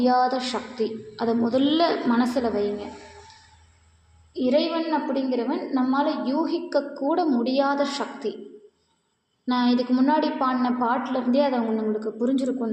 சக்தி. அதை முதல்ல மனசில் வைங்க. இறைவன் அப்படிங்கிறவன் நம்மால் யூகிக்கக்கூட முடியாத சக்தி. நான் இதுக்கு முன்னாடி பாடின பாட்டிலேருந்தே அதை உங்களுக்கு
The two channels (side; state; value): both; identical; correlation 1.00